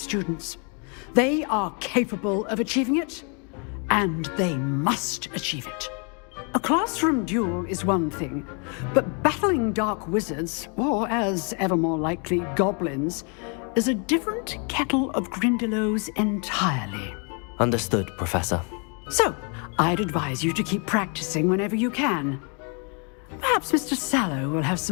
They are capable of achieving it, and they must achieve it. A classroom duel is one thing, but battling dark wizards, or as ever more likely, goblins, is a different kettle of Grindylows entirely. Understood, Professor. So, I'd advise you to keep practicing whenever you can. Perhaps Mr. Sallow will have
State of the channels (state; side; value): quieter; right; 37.1 dB